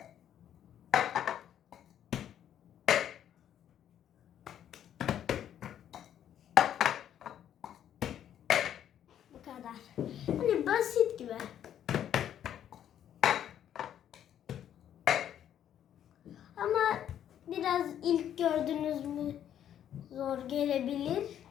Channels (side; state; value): right; quieter; 10.2 dB